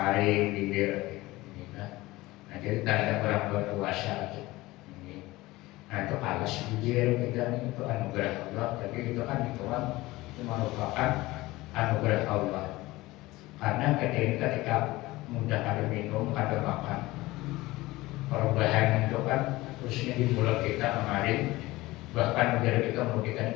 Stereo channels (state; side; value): quieter; right; 19.4 dB